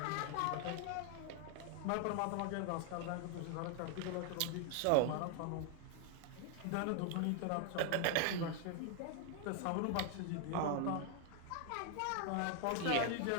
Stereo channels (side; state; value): both; different; correlation 0.00